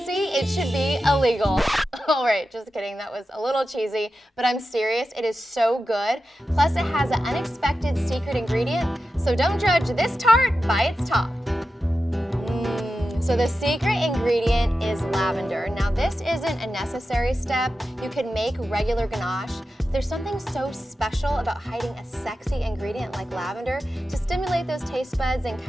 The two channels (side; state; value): both; normal; correlation 0.92